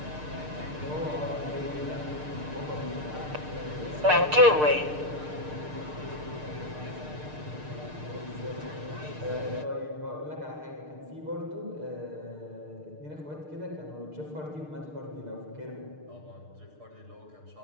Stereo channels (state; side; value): late; left; 6.6 ms